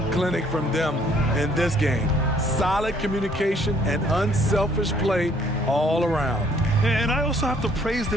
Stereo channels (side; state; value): both; normal; correlation 0.62